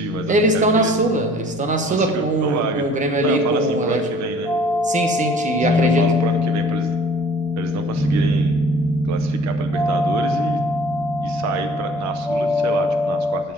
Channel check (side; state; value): both; normal; correlation 0.52